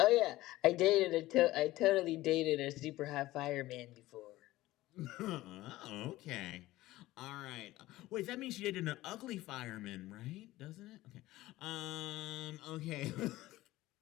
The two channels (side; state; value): right; quieter; 17.1 dB